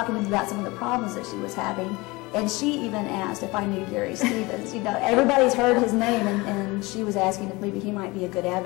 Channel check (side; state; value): right; quieter; 23.3 dB